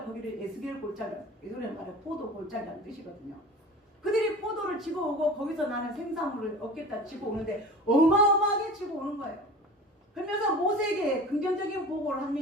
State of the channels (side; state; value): both; normal; correlation 0.37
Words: 거기를 에스겔 골짜기, 예술의 말에 포도 골짜기라는 뜻이거든요. 그들이 포도를 지고 오고 거기서 나는 생산물을 얻겠다 지고 오는데 어마어마하게 지고 오는 거예요. 그러면서 모세에게 긍정적인 보고를